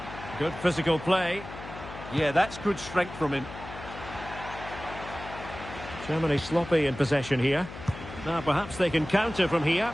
Good physical play. Yeah, that's good strength from him. Germany sloppy in possession here. Now perhaps they can counter from here.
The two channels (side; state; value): left; noise; hum, 13 dB below the sound